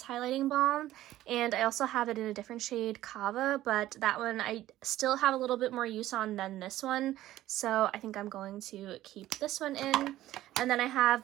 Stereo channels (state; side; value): quieter; left; 14.5 dB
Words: Highlighting Balm. And I also have it in a different shade, Kava, but that one I still have a little bit more use on than this one. So I think I'm going to keep this one in. And then I have